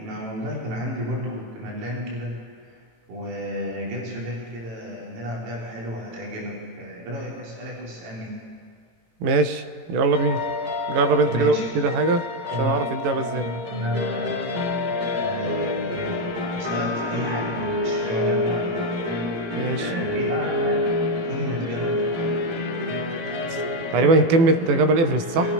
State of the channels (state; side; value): late; left; 18 ms